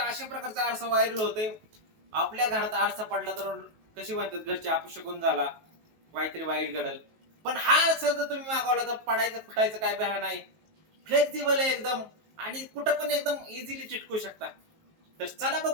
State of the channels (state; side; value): late; left; 19 ms